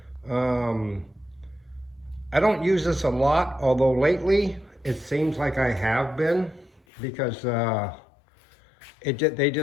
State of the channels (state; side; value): drops out; right; at 6.8 s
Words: I don't use this a lot, although lately it seems like I have been, because they